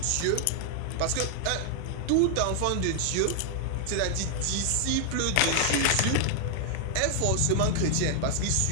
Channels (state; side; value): different; both; correlation 0.00